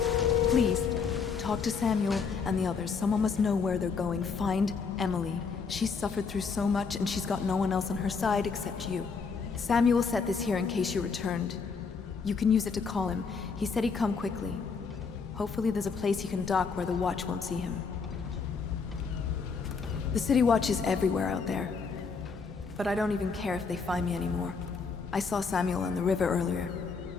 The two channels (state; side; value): quieter; right; 5.2 dB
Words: Please, talk to Samuel and the others. Someone must know where they're going. Find Emily. She's suffered through so much and she's got no one else on her side except you. Samuel set this here in case you returned. You can use it to call him. He said he'd come quickly. Hopefully there's a place he can dock where the Watch won't see him. The City Watch is everywhere out there. But I don't even care if they find me anymore. I saw Samuel on the river earlier.